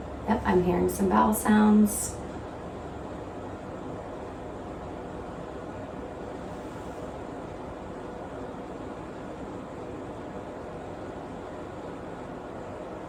Yep, I'm hearing some bowel sounds.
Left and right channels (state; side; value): identical; both; correlation 1.00